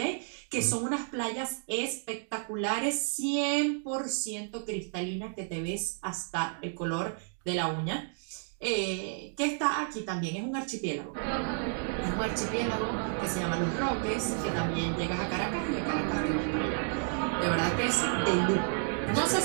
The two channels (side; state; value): left; silent; 57 dB below the other